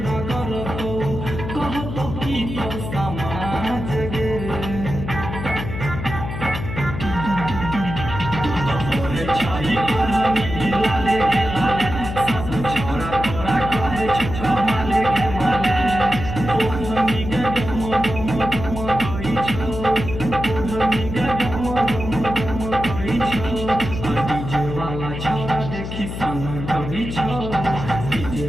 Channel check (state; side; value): noise; left; hum, 7 dB below the sound